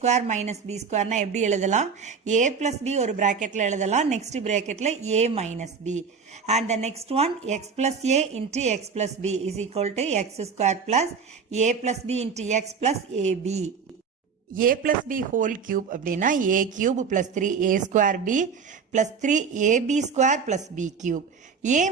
minus b square னா எப்படி எழுதலாம், a plus b ஒரு பிராக்கெட்ல எழுதலாம், next பிராக்கெட்ல a minus b, and the next one x plus a into x plus b is equal to x square plus a plus b into x plus ab. a plus b whole cube அப்படின்னா a cube plus 3a square b plus 3ab square plus b cube. a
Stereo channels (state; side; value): quieter; left; 5.8 dB